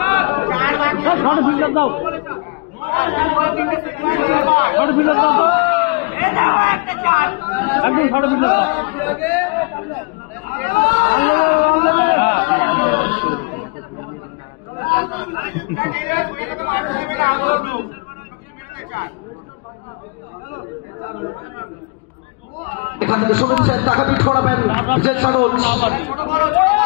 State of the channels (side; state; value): right; quieter; 30.8 dB